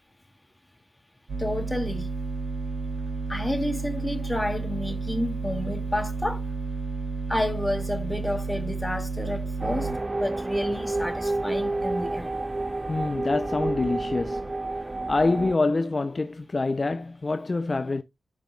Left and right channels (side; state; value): both; normal; correlation 0.92